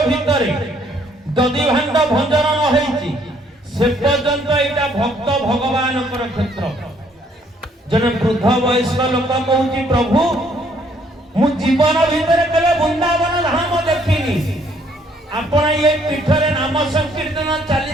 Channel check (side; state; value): both; normal; correlation 0.65